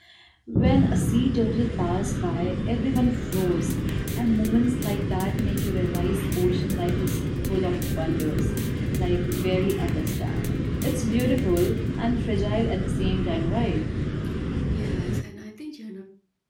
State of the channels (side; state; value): both; identical; correlation 1.00